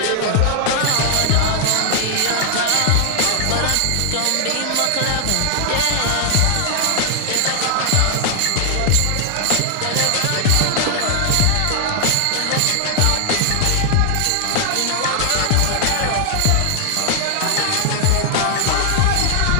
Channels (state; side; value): different; both; correlation 0.00